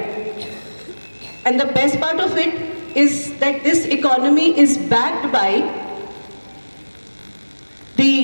And the best part of it is that this economy is backed by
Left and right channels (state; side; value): inverted; both; correlation -1.00